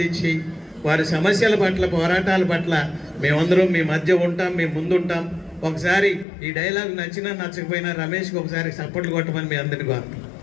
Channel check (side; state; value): right; drops out; at 6.2 s